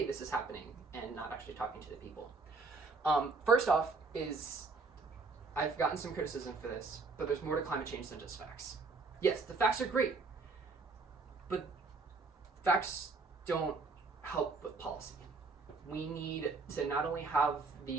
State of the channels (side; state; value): left; quieter; 4.1 dB